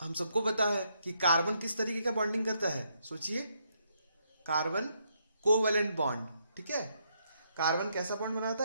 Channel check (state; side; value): inverted; both; correlation -0.76